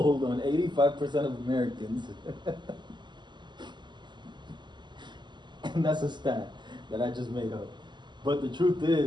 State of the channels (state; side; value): late; left; 0.22 ms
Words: on 85% of Americans. And that's a stat that I just made up. But the truth